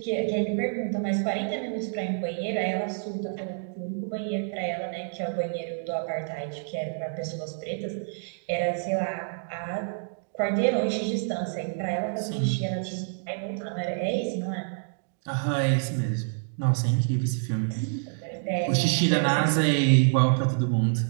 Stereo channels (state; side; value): silent; left; digital silence